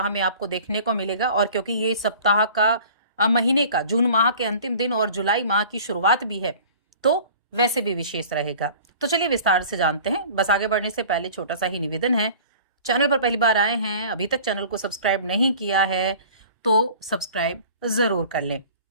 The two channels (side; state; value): both; inverted; correlation -0.45